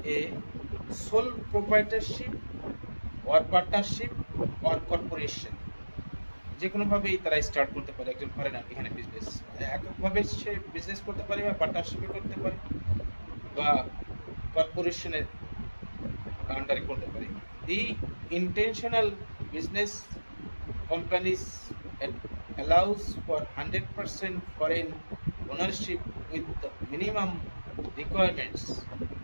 a sole proprietorship or partnership or corporation। যে কোনোভাবেই তারা স্টার্ট করতে পারে একজন ফরেনার এখানে বিজনেস, এককভাবে সে বিজনেস করতে পারে বা পার্টনারশিপে করতে পারে বা কর্পোরেশনের আন্ডারে করতে পারে। The intentional business companies allows for 100% foreign ownership with the minimum requirements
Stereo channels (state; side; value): inverted; both; correlation -1.00